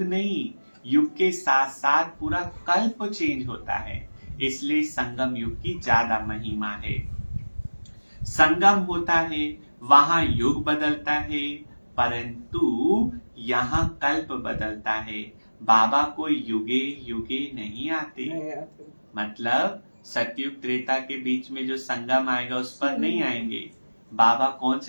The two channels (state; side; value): inverted; both; correlation -1.00